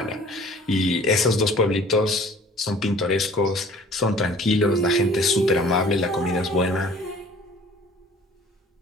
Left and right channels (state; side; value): normal; both; correlation 0.50